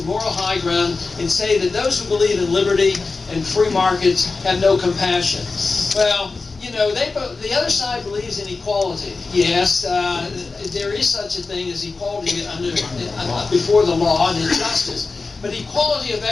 moral high ground and say that those who believe in liberty and free markets have no compassion. Well, you know, the other side believes in equality. Yes, there is such a thing as equality before the law and in justice. But equality of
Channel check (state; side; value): quieter; right; 4.0 dB